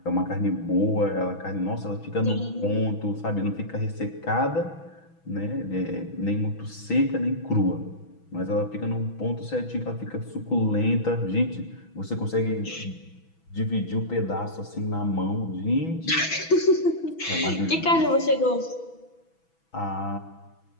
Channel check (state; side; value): late; right; 6.1 ms